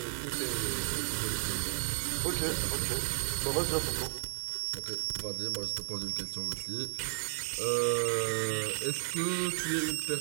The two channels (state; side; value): silent; left; digital silence